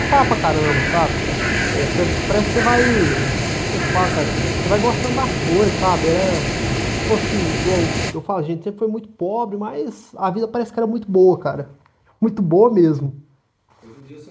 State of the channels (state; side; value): identical; both; correlation 1.00